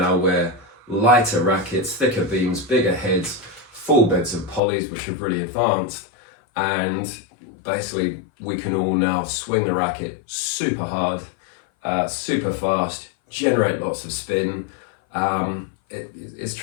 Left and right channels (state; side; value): drops out; right; at 4.6 s